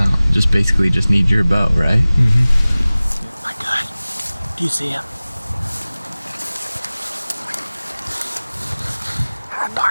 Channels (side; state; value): both; inverted; correlation -0.99